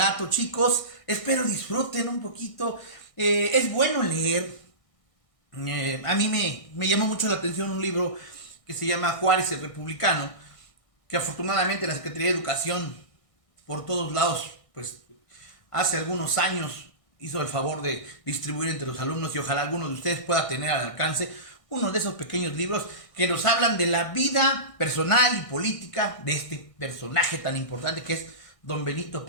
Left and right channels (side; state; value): right; late; 1.6 ms